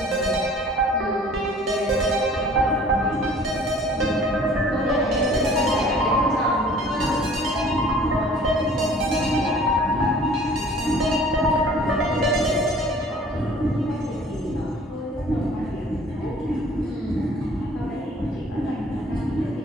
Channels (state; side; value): normal; both; correlation 0.51